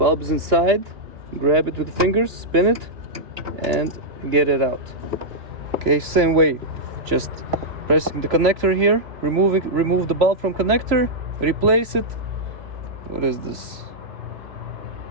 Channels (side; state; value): left; late; 3.0 ms